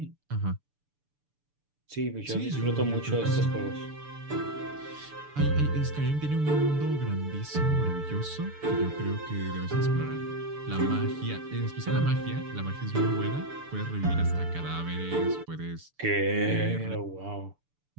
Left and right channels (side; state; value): left; late; 6.9 ms